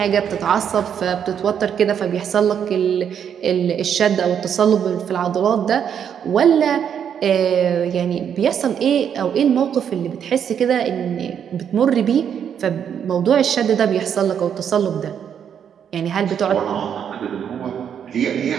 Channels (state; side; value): quieter; left; 8.3 dB